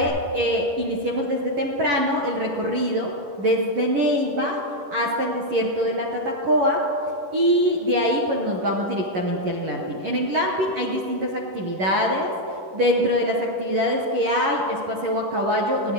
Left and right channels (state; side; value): late; left; 10 ms